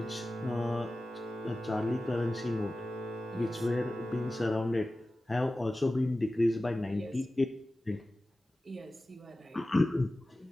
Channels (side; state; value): both; normal; correlation 0.95